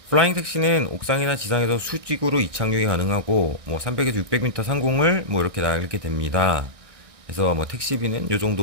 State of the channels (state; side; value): late; left; 1.6 ms